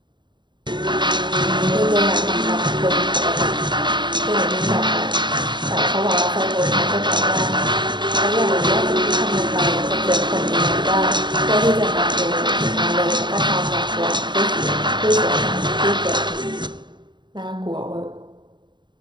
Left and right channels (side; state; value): left; late; 0.22 ms